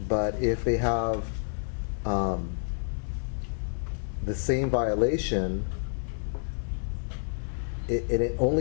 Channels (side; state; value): right; silent; digital silence